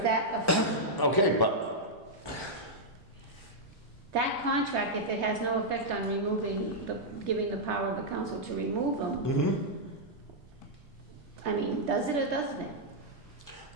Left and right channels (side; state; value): both; normal; correlation -0.06